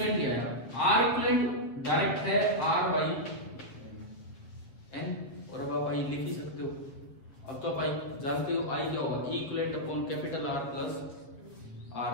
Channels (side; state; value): right; late; 7.6 ms